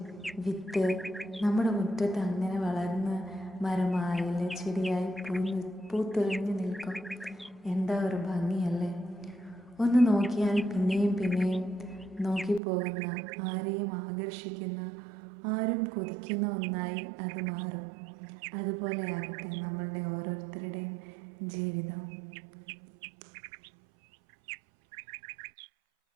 വിത്ത് നമ്മുടെ മുറ്റത്ത് അങ്ങനെ വളർന്ന് മരമായില്ലേ, ചെടിയായി പൂത്തുലഞ്ഞു നിൽക്കും. എന്താ ഒരു ഭംഗിയല്ലേ! ഒന്ന് നോക്കിയാൽ പിന്നെയും പിന്നെയും നോക്കിപ്പോകുന്ന, ആരെയും ആകർഷിക്കുന്ന, ആരും കൊതിക്കുന്ന ഒന്നായി അത് മാറും. അതുപോലെ ആകട്ടെ നമ്മളുടെ ഓരോരുത്തരുടെയും ജീവിതം.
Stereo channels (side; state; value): left; drops out; at 12.6 s